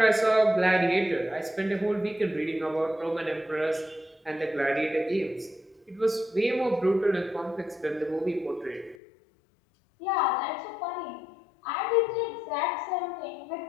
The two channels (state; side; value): drops out; right; at 9.0 s